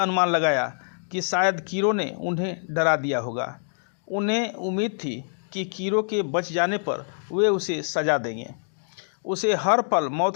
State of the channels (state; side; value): silent; right; 61 dB below the other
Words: लगाया कि शायद कीरो ने उन्हें डरा दिया होगा। उन्हें उम्मीद थी कि कीरो के बच जाने पर वे उसे सजा देंगे। उसे हर पल